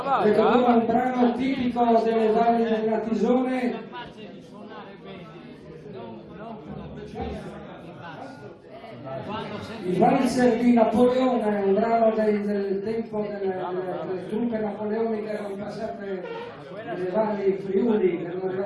Ecco ora un brano tipico delle valli della Tisone. Il valzer di Napoleone, un brano del tempo delle truppe napoleoniche che erano passate nelle valli Friuli, che erano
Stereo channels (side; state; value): both; identical; correlation 1.00